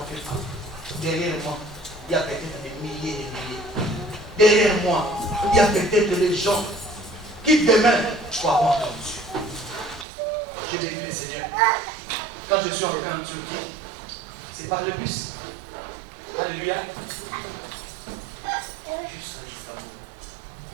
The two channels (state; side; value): drops out; left; at 10.1 s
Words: fais pas. Derrière moi, il y a peut-être des milliers et des milliers. Derrière moi, il y a peut-être des gens qui demain croiront en Dieu. J'ai béni le Seigneur. Quand je suis entré en Turquie, c'est par le bus. Alléluia. Juste à Istanbul.